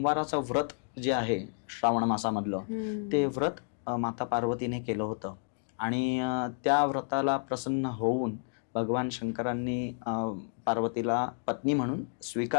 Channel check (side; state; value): right; silent; 57 dB below the other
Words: व्रत जे आहे श्रावण मासामधलं ते व्रत माता पार्वतीने केलं होतं आणि त्या व्रताला प्रसन्न होऊन भगवान शंकरांनी पार्वतीला पत्नी म्हणून